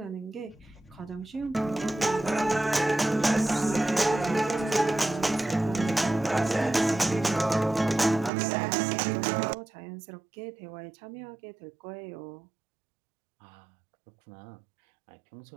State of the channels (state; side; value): drops out; left; at 8.3 s